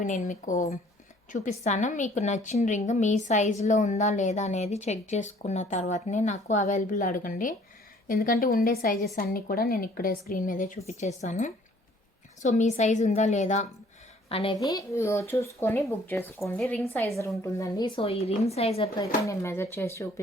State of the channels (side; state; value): both; normal; correlation 0.57